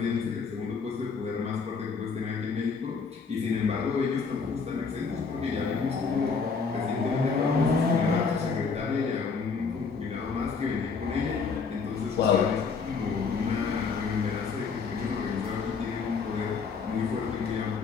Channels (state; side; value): quieter; right; 5.2 dB